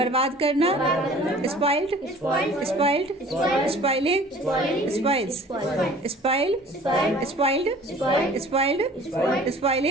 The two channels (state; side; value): normal; both; correlation 0.48